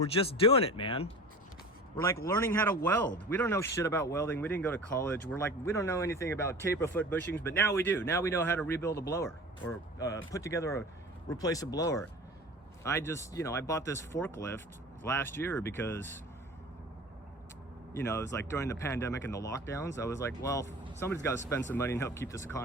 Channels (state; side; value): normal; both; correlation 0.38